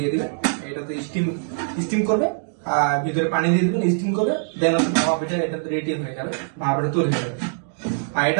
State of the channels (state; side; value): silent; left; digital silence